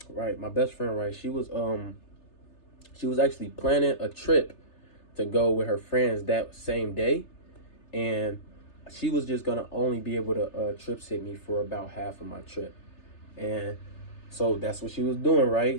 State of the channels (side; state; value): right; late; 3.3 ms